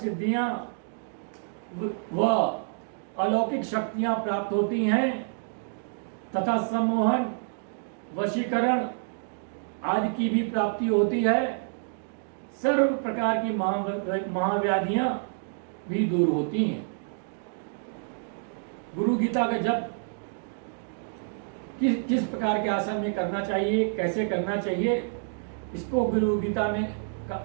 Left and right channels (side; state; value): left; silent; digital silence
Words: व अलौकिक शक्तियां प्राप्त होती हैं तथा सम्मोहन, वशीकरण आदि की भी प्राप्ति होती है। सर्व प्रकार की महाव्याधियां भी दूर होती हैं। गुरु गीता का जप किस प्रकार के आसन में करना चाहिए, कैसे करना चाहिए, इसको गुरु गीता में